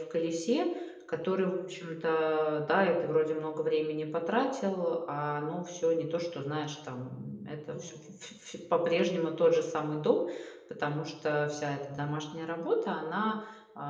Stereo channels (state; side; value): identical; both; correlation 1.00